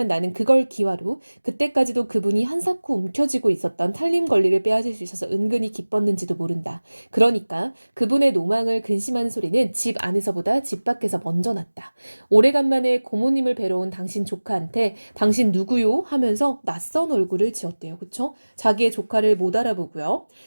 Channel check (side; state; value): both; inverted; correlation -1.00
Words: 나는 그걸 기화로 그때까지도 그분이 한사코 움켜쥐고 있었던 탈림 권리를 빼앗을 수 있어서 은근히 기뻤는지도 모른다. 그러니까 그분의 노망을 근심하는 소리는 집 안에서보다 집 밖에서 먼저 났다. 오래간만에 고모님을 뵈러 온 당신 조카한테 당신 누구요? 하면서 낯선 얼굴을 지었대요. 그쵸? 자기의 조카를 못 알아보고요.